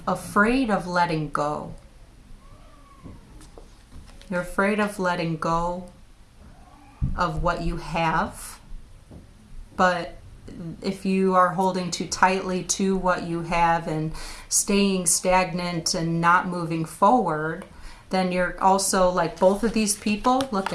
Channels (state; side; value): identical; both; correlation 1.00